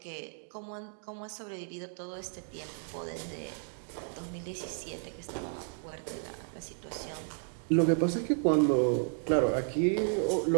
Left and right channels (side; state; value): left; silent; 56 dB below the other